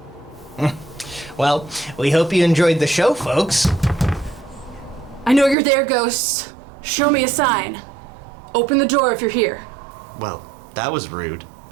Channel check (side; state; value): left; drops out; at 5.6 s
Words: Well, we hope you enjoyed the show, folks. I know you're there, ghosts. Show me a sign. Open the door if you're here. Well, that was rude.